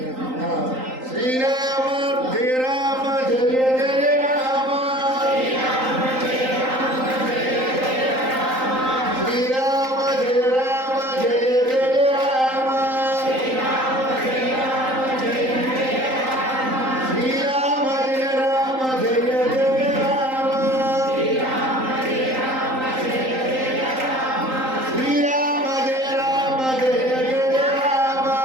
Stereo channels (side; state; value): left; late; 3.8 ms